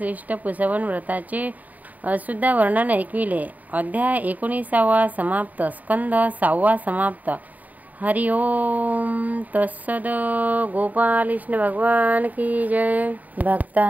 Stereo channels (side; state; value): left; late; 0.077 ms